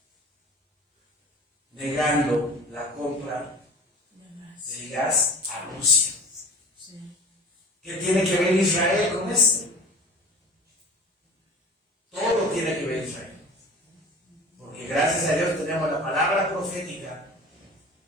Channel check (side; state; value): both; normal; correlation 0.40